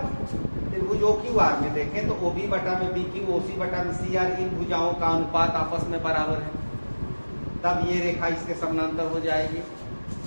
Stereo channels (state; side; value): inverted; both; correlation -1.00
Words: त्रिभुज OQR में देखें तो OB बटा में BQ OC बटा में CR, इन भुजाओं का अनुपात आपस में बराबर है, तब ये रेखा इसके समानांतर हो जाएगी।